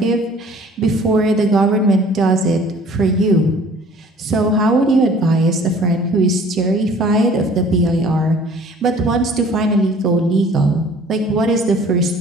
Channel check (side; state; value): both; normal; correlation 0.51